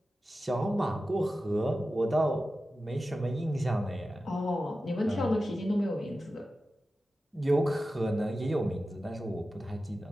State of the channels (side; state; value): both; normal; correlation 0.93